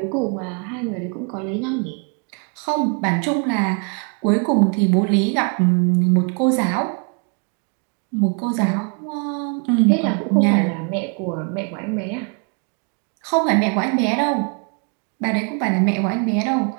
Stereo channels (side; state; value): left; quieter; 38.3 dB